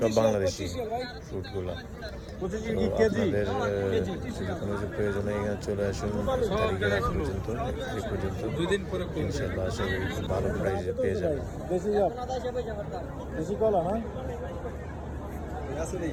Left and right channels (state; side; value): identical; both; correlation 1.00